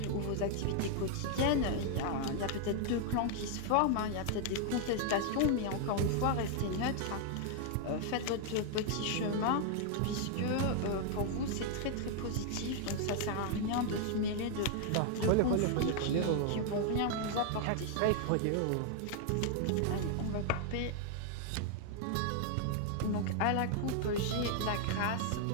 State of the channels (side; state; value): both; different; correlation 0.00